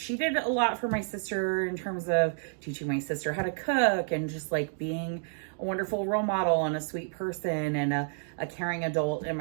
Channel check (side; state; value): left; silent; digital silence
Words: did a lot for my sister in terms of teaching my sister how to cook and just like being a wonderful role model and a sweet person and a caring adult in